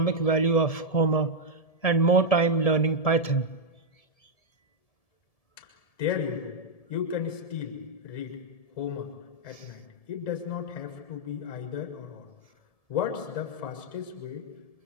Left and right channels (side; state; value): right; late; 1.7 ms